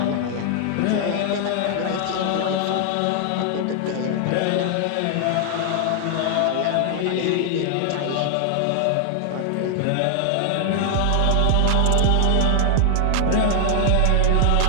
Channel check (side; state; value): both; different; correlation 0.00